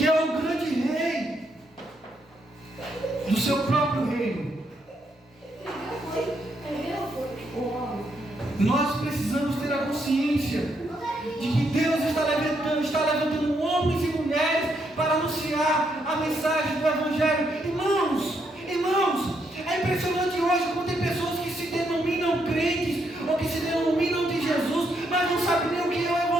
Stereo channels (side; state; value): both; normal; correlation 0.77